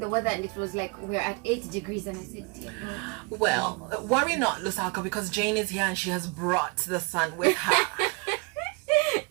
weather and it was like we're at 8 degrees and I said, dear God. Well, worry not, Lusaka, because Jayne is here and she has brought the sun with her.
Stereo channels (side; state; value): left; quieter; 30.2 dB